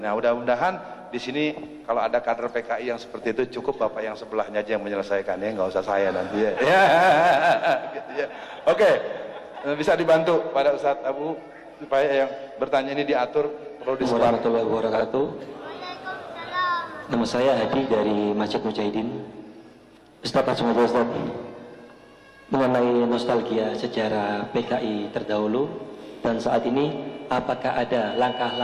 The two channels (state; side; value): identical; both; correlation 1.00